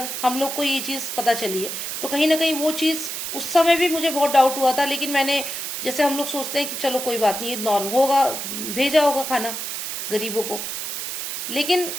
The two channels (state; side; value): noise; right; hiss, 5 dB below the sound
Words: हम लोग को ये चीज पता चली है। तो कहीं ना कहीं वो चीज उस समय भी मुझे बहुत डाउट हुआ था, लेकिन मैंने, जैसे हम लोग सोचते हैं कि चलो कोई बात नहीं, नॉर्मल होगा, भेजा होगा खाना गरीबों को, लेकिन